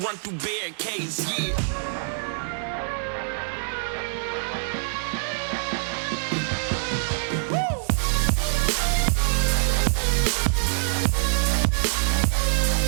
run through barricades, yeah.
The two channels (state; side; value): silent; left; digital silence